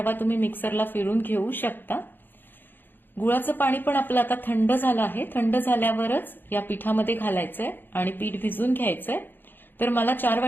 तुम्ही मिक्सरला फिरून घेऊ शकता. गुळाचं पाणी पण आपलं आता थंड झालं आहे. थंड झाल्यावरच या पिठामध्ये घालायचंय आणि पीठ भिजून घ्यायचंय. तर मला 4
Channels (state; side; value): late; right; 0.095 ms